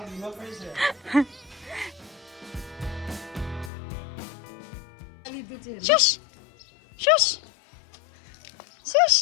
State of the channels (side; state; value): right; drops out; at 3.7 s